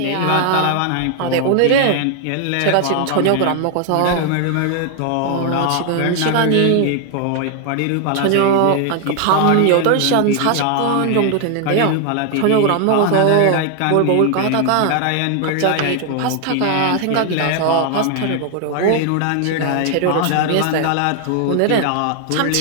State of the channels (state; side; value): different; both; correlation 0.00